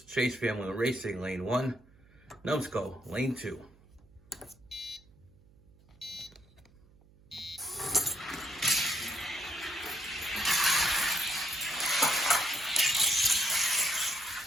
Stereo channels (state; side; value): noise; right; hum, 28 dB below the sound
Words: Chase Family Racing, lane 1. Numbskull, lane 2.